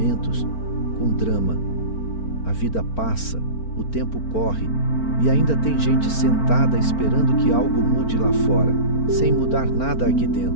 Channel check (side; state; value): right; late; 4.4 ms